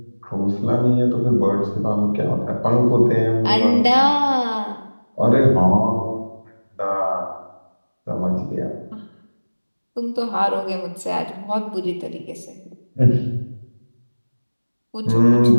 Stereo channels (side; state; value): both; inverted; correlation -1.00